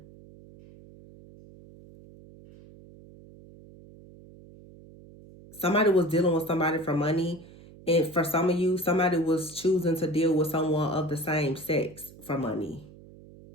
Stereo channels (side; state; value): right; noise; hum, 21 dB below the sound